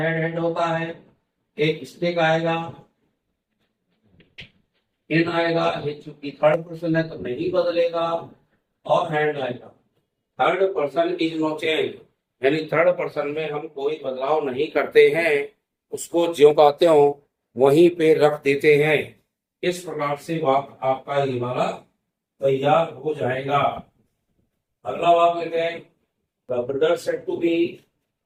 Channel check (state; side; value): identical; both; correlation 1.00